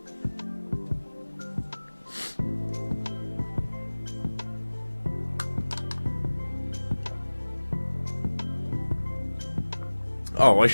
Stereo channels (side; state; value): both; inverted; correlation -1.00